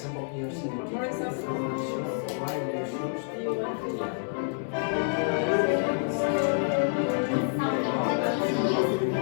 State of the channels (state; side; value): silent; right; digital silence